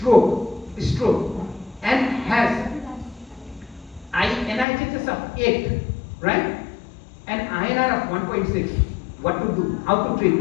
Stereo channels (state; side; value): drops out; right; at 4.7 s